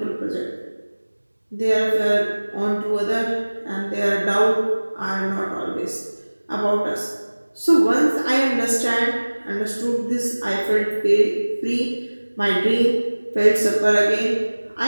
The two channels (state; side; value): inverted; both; correlation -1.00